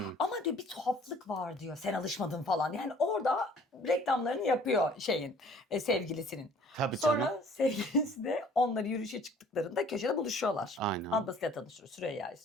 Ama diyor bir tuhaflık var diyor. Sen alışmadın falan. Yani orada reklamlarını yapıyor sevgilisinin. Tabii canım. Sonra sevgilisi de onları yürüyüşe çıktıklarında köşede buluşuyorlar. Aynen. Ablasıyla tanışıyor. Süreyya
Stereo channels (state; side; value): normal; both; correlation 0.54